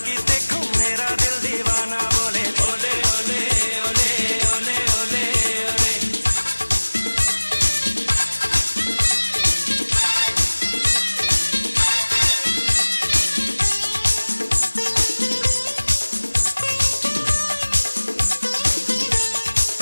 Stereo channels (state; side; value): inverted; both; correlation -1.00